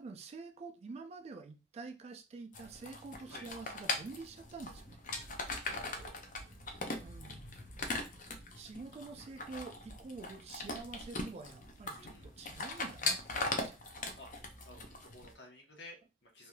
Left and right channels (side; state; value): both; normal; correlation 0.11